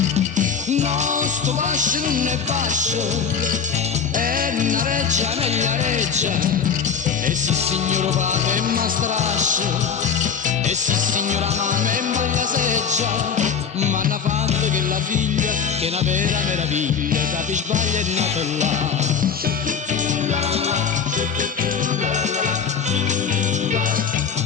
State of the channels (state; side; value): quieter; right; 6.6 dB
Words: No, sto fascio non è fascio, è una reggia, meglio reggia, e sì signor padre è una strascia, e sì signora mamma è bella seggia, ma hanno fatto che la figlia, che è una vera meraviglia, capi sbaglia è nata là.